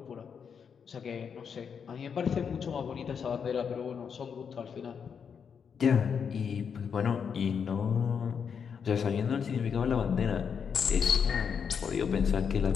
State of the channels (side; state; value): right; quieter; 6.8 dB